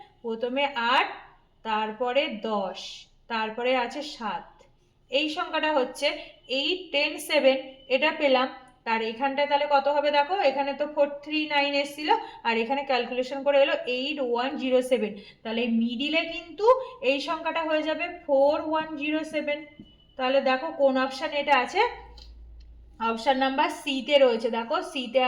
প্রথমে 8, তারপরে 10, তারপরে আছে 7, এই সংখ্যাটা হচ্ছে 8 10 7, এটা পেলাম। তার এখানটায় তাহলে কত হবে দেখো, এখানে তো 439 এসেছিল আর এখানে ক্যালকুলেশন করে এলো 8107, তাহলে মিডিলে কিন্তু এই সংখ্যাটা হয়ে যাবে 4107। তাহলে দেখো কোন অপশান এটা আছে, অপশান নাম্বার সিতে রয়েছে। দেখো সিতে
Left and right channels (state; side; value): identical; both; correlation 1.00